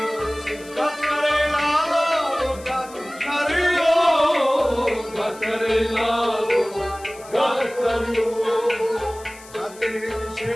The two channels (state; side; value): noise; left; hiss, 20 dB below the sound